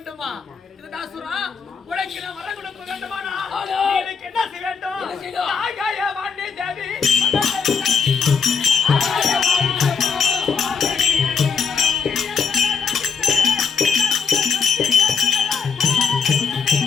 இதுதாசுரா உனக்கு நான் வர கொடுக்க வேண்டுமா? எனக்கு என்ன செய்ய வேண்டும்? ஆகாய வாணி தேவி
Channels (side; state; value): right; quieter; 5.8 dB